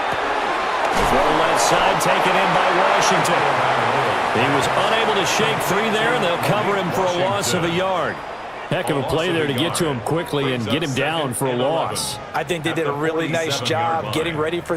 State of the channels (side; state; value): both; identical; correlation 1.00